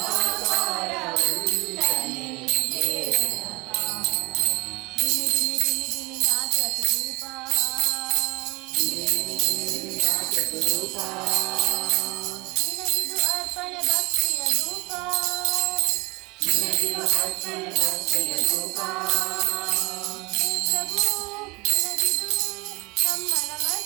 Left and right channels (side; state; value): left; quieter; 25.0 dB